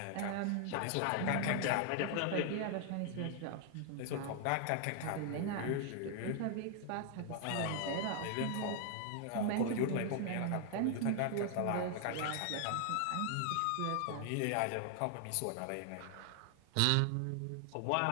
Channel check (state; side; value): different; both; correlation 0.00